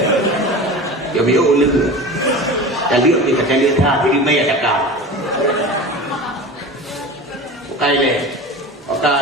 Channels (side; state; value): both; normal; correlation 0.33